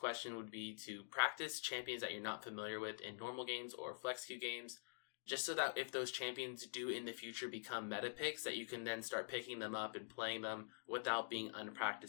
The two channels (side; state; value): right; silent; digital silence